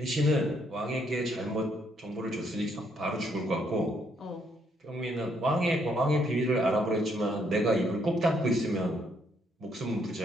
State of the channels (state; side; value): normal; both; correlation 0.71